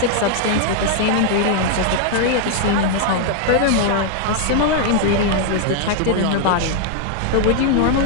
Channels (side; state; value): both; different; correlation 0.00